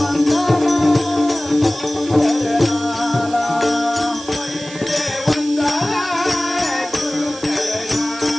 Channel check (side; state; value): right; noise; hiss, 16 dB below the sound